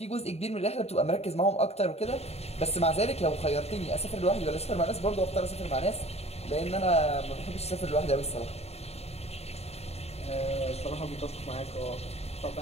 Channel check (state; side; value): late; right; 0.30 ms